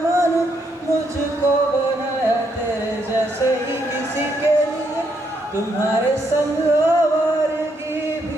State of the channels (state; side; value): normal; both; correlation 0.76